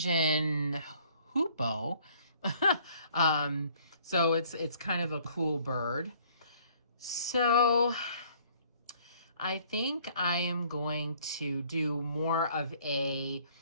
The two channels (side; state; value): both; inverted; correlation -0.59